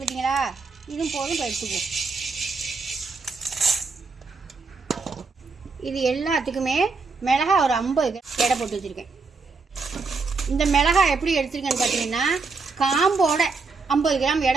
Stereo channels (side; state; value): left; quieter; 4.3 dB